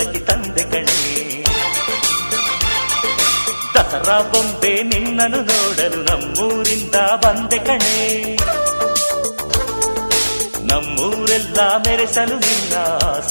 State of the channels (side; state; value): both; inverted; correlation -1.00